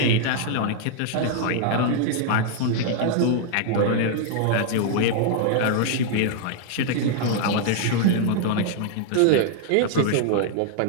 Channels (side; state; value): both; different; correlation 0.00